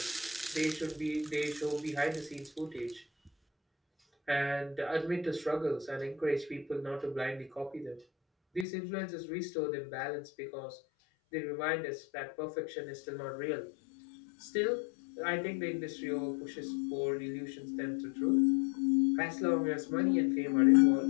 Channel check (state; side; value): drops out; right; at 8.7 s